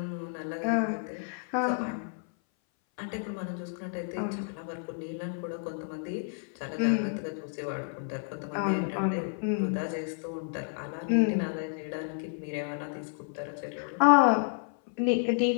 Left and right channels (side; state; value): right; silent; 57 dB below the other